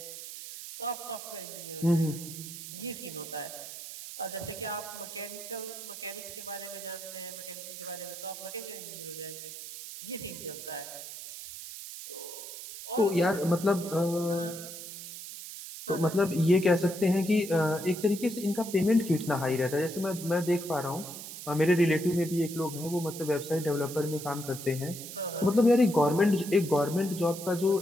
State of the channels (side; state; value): right; noise; hiss, 11 dB below the sound